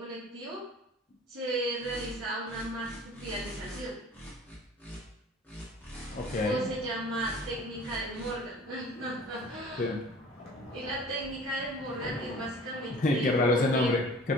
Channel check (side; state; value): both; normal; correlation 0.45